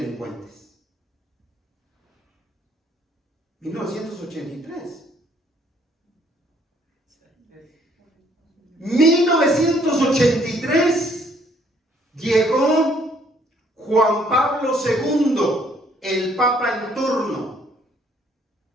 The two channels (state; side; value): normal; both; correlation 0.64